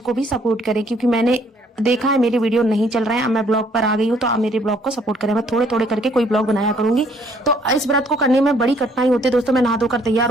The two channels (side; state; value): both; normal; correlation 0.64